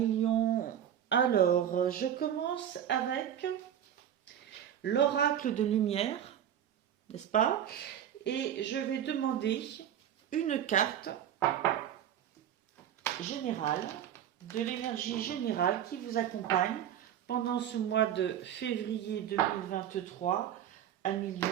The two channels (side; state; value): left; quieter; 10.0 dB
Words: lions. Alors, je commence avec l'oracle de lumière, n'est-ce pas? Et je vais demander une carte générale, de l'énergie générale qui vous accompagne pendant ce mois de février 2023 à Lyon